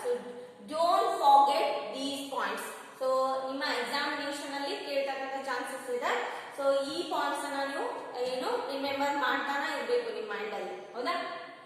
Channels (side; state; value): both; identical; correlation 1.00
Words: so don't forget these points. so ನಿಮ್ಮ examination ಅಲ್ಲಿ ಕೇಳತಕ್ಕಂತ chances ಇದೆ. So ಈ points ಅನ್ನ ನೀವು ಏನು remember ಮಾಡ್ತಾನೆ ಇರಬೇಕು ನಿಮ್ಮ ಮೈಂಡ್ ಅಲ್ಲಿ ಹೌದಾ.